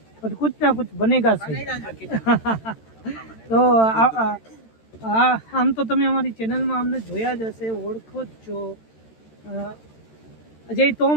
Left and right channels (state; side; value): late; right; 13 ms